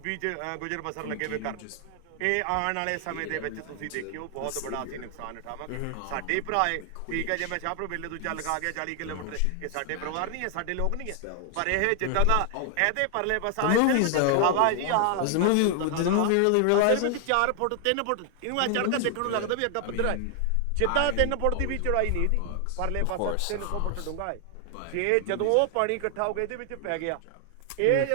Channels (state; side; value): different; both; correlation 0.00